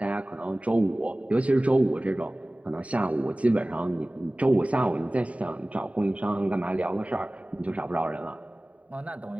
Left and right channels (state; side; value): late; left; 0.067 ms